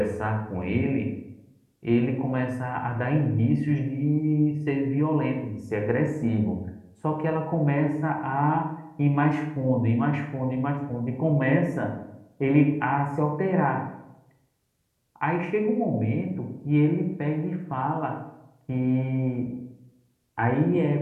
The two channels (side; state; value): both; identical; correlation 1.00